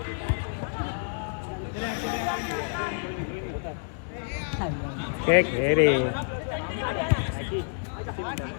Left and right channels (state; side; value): silent; right; digital silence